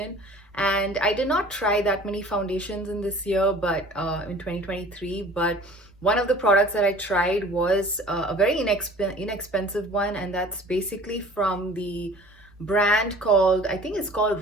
And I did not try that many foundations in this year, but in 2023. But one of the products that I tried was a very inexpensive one, and that's basically from the brand called, I think it's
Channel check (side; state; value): left; noise; hum, 30 dB below the sound